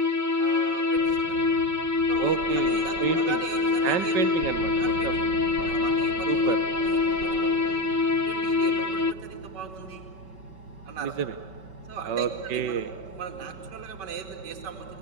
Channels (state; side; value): late; left; 5.3 ms